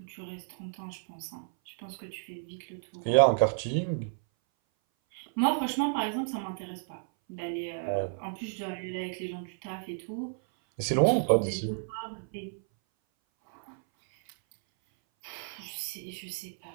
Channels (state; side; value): silent; left; 57 dB below the other